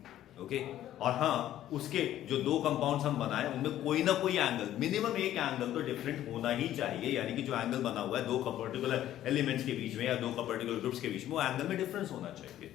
ओके और हाँ, उसके जो दो कंपाउंड्स हम बनाए उनमें कोई ना कोई एंगल, मिनिमम एक एंगल तो डिफरेंट होना ही चाहिए, यानी कि जो एंगल बना हुआ है दो पर्टिकुलर एलिमेंट्स के बीच में या दो पर्टिकुलर ग्रुप्स के बीच में, वो एंगल में डिफरेंस होना चाहिए।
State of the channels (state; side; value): quieter; right; 12.6 dB